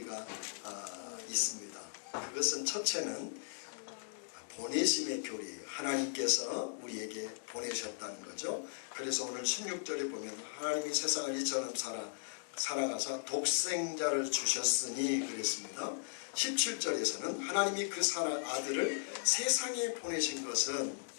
있습니다. 그것은 첫째는 보내심의 교리예요. 하나님께서 우리에게 보내셨다는 거죠. 그래서 오늘 16절에 보면 하나님이 세상을 이처럼 사랑하사 독생자를 주셨으니 그랬습니다. 17절에서는 하나님이 그 아들을 세상에 보내신 것은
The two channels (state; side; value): silent; right; digital silence